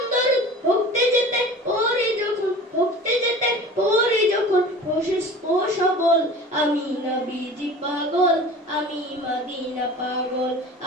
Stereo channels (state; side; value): normal; both; correlation 0.40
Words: দরুদ। ভুগতে যেতে পড়ি যখন, ভুগতে যেতে পড়ি যখন অসুস্থ সবল, আমি নবীজি পাগল, আমি মদিনা পাগল,